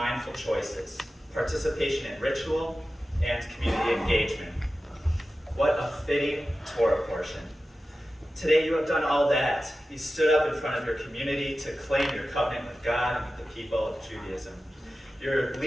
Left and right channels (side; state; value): both; normal; correlation 0.94